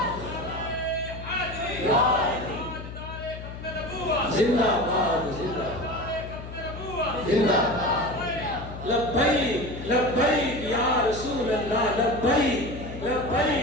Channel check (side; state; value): left; noise; hum, 11 dB below the sound